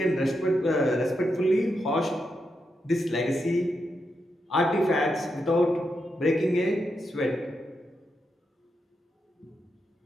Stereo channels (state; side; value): normal; both; correlation 0.84